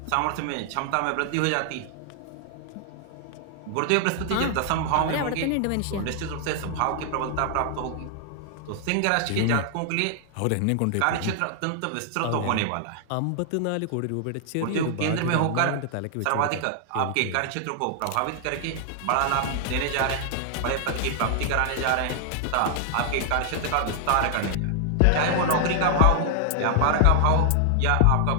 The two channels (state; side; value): different; both; correlation 0.00